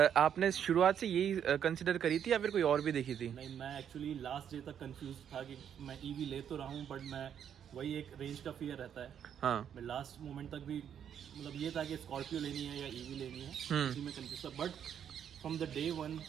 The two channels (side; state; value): left; quieter; 8.8 dB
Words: आपने शुरुआत से यही कंसिडर करी थी या फिर कोई और भी देखी थी? नहीं, मैं एक्चुअली लास्ट डे तक कंफ्यूज था कि मैं ईवी ले तो रहा हूँ, बट मैं वही एक रेंज का फियर रहता है। हाँ। मैं लास्ट मोमेंट तक भी मतलब ये था कि स्कॉर्पियो लेनी है या ईवी लेनी है, इसी में कंफ्यूज था। But from the day one